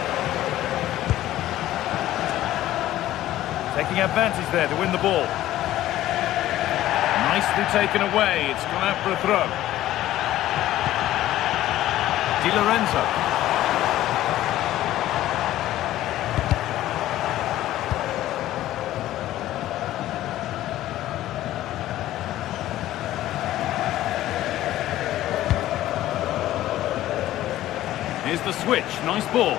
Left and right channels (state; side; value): quieter; right; 14.2 dB